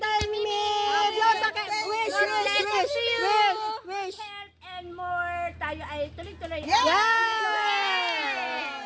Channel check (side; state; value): both; identical; correlation 1.00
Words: Mimi. Wish, wish. Health and more. Tayo ay tuloy-tuloy. Yeah!